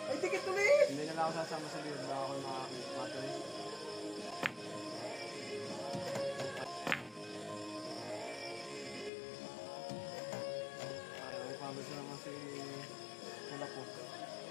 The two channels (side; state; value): right; drops out; at 9.1 s